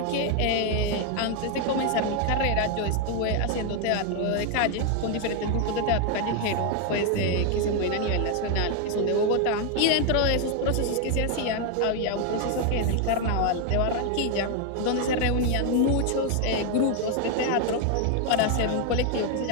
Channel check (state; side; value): different; both; correlation 0.01